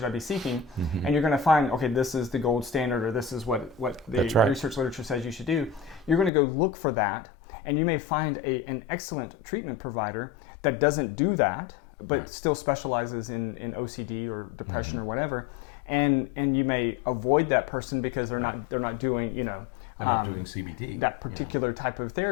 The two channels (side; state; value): right; drops out; at 6.3 s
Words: I be seeking? And you're going to find, okay, this is the gold standard, or this is what the research literature says you should do. You're going to go look for that, and you may find an excellent treatment provider that doesn't do that, but still specializes in OCD or depression or whatever, and you may avoid that person because they're not doing, they're not doing CBT, that particular type of